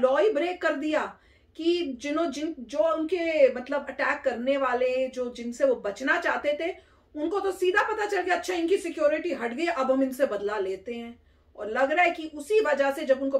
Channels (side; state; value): both; identical; correlation 1.00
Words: ही ब्रेक कर दिया कि जो उनके मतलब अटैक करने वाले, जो जिनसे वो बचना चाहते थे, उनको तो सीधा पता चल गया अच्छा इनकी सिक्योरिटी हट गई, अब हम इनसे बदला लेते हैं। और लग रहा है कि उसी वजह से जब उनको